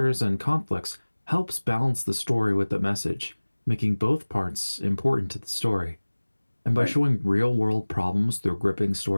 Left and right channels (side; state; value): both; inverted; correlation -1.00